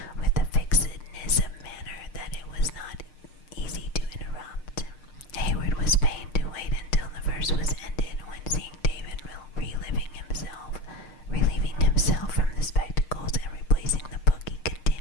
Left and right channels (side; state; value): right; late; 6.6 ms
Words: with a fixedness of manner that it was not easy to interrupt. Hayward was fain to wait until the verse was ended, when, seeing David relieving himself from the spectacles and replacing the book, he